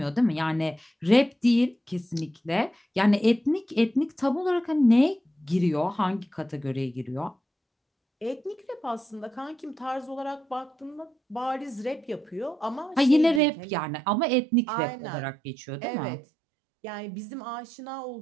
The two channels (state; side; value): drops out; left; at 13.4 s